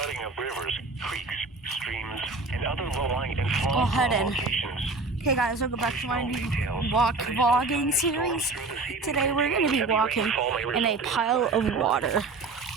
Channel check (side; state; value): left; quieter; 3.8 dB